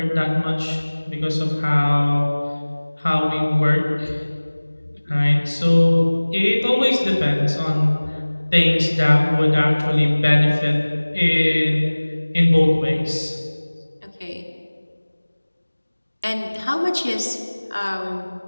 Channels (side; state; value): both; inverted; correlation -1.00